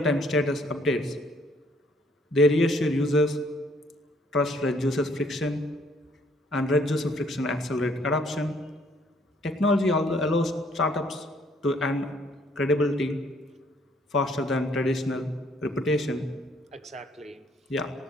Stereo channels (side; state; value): both; normal; correlation 0.64